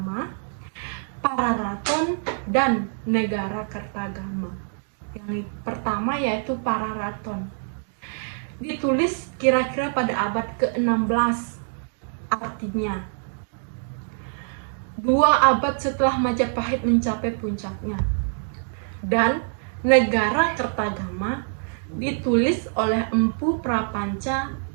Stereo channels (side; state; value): left; silent; digital silence